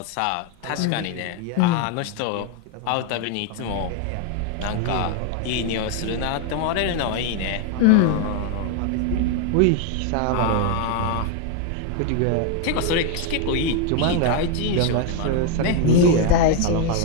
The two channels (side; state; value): both; different; correlation 0.01